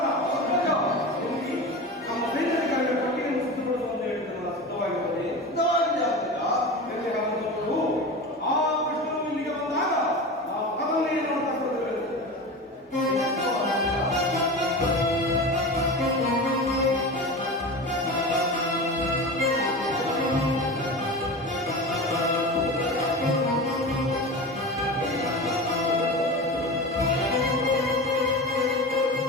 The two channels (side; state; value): both; normal; correlation 0.28